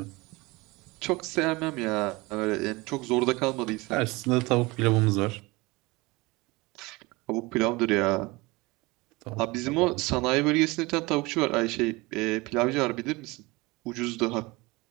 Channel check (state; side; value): quieter; left; 23.2 dB